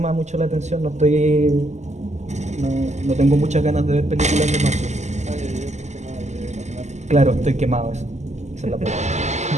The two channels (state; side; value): late; left; 0.33 ms